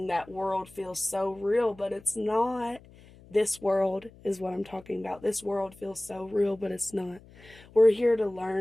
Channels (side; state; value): left; noise; hum, 23 dB below the sound